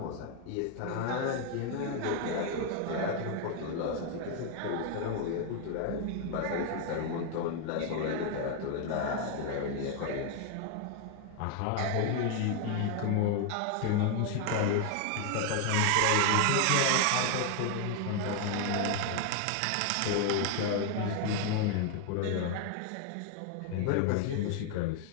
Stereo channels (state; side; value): different; both; correlation 0.00